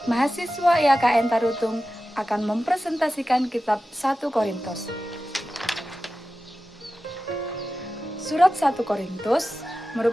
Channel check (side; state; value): both; normal; correlation 0.94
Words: mahasiswa IAKN Tarutung akan mempresentasikan kitab 1 Korintus. Surat 1 Korintus